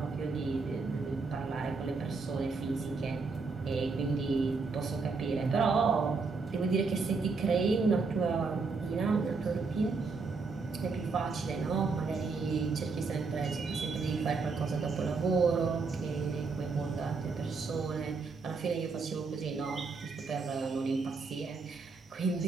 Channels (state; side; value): quieter; left; 4.4 dB